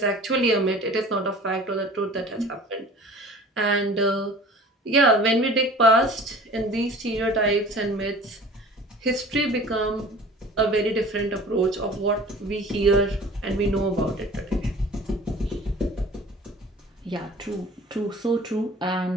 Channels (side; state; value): both; normal; correlation 0.44